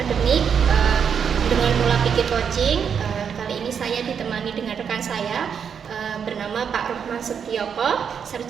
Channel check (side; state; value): left; quieter; 7.2 dB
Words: dengan pola pikir coaching. Kali ini saya ditemani dengan rekan saya bernama Pak Rohman Setioko,